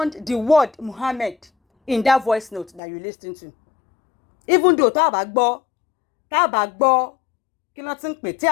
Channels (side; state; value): right; drops out; at 2.8 s